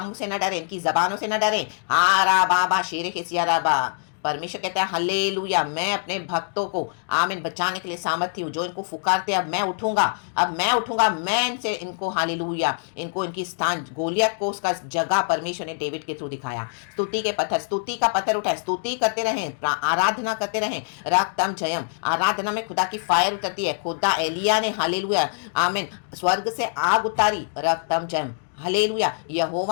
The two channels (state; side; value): silent; right; digital silence